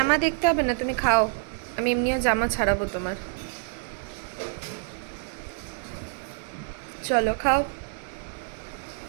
দেখতে হবে না, তুমি খাও, আমি এমনিও জামা ছাড়াবো তোমার। চলো খাও।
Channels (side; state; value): left; silent; digital silence